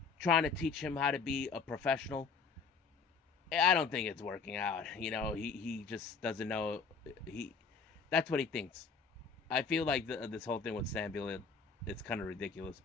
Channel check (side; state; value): right; quieter; 5.2 dB